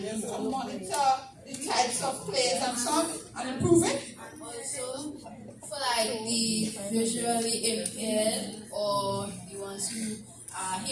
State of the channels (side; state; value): both; identical; correlation 1.00